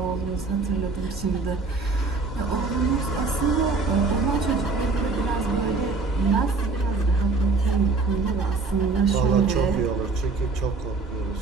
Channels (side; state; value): left; quieter; 4.0 dB